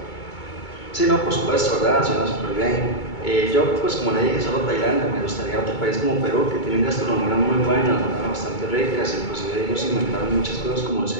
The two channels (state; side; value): late; right; 2.2 ms